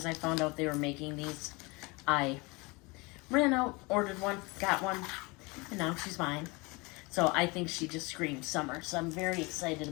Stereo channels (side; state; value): right; quieter; 26.4 dB